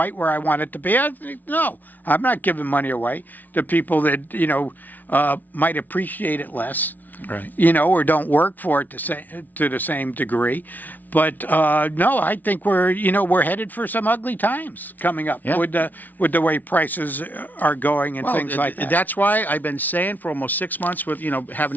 where I want it to be, no, I'm not giving money away to people that, might appreciate it less. Right. Or don't work for it to the same degree. But no, I think we're headed for some ugly times coming up with the way prices are going and things like that. That's why I've been saying for almost 6 months with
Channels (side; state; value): right; late; 0.081 ms